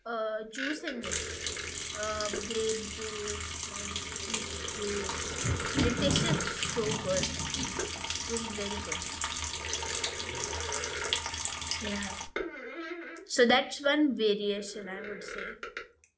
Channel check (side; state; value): both; identical; correlation 1.00